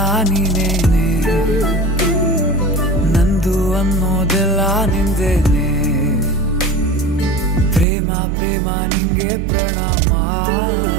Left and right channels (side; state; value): left; drops out; at 7.9 s